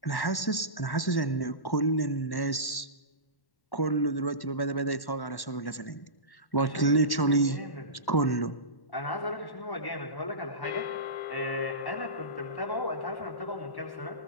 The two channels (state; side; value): late; right; 1.1 ms